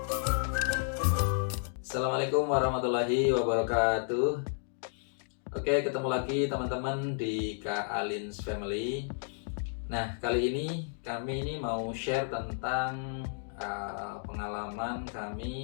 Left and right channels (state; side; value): silent; right; digital silence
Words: Assalamualaikum warahmatullahi wabarakatuh. Oke, ketemu lagi teman-teman di Kak Alin's Family. Nah, kali ini kami mau share tentang pengalaman